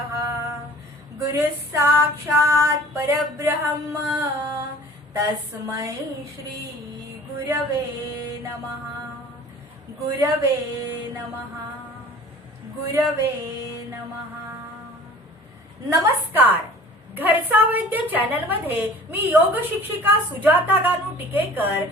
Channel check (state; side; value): normal; both; correlation 0.47